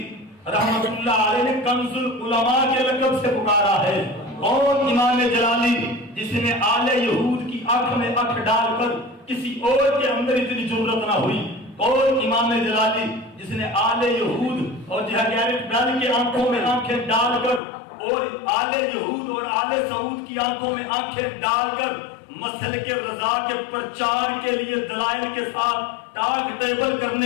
رحمت اللہ علیہ نے کنز العلماء کے لقب سے پکارا ہے؟ کون امام جلالی جس نے آل یہود کی آنکھ میں آنکھ ڈال کر کسی اور کے اندر اتنی جرأت نہ ہوئی؟ کون امام جلالی جس نے آل یہود اور گیرٹ بیل کی آنکھوں میں آنکھیں ڈال کر اور آل یہود اور آل سعود کی آنکھوں میں آنکھیں ڈال کر مسلک رضا کے پرچار کے لیے دلائل کے ساتھ ٹاک ٹیبل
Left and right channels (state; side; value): drops out; right; at 17.6 s